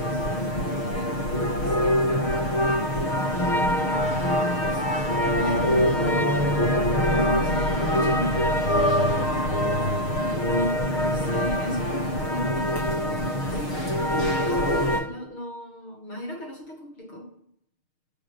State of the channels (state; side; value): late; right; 6.5 ms